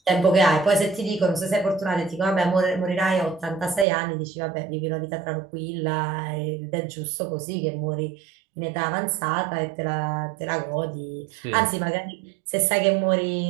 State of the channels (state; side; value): drops out; left; at 3.9 s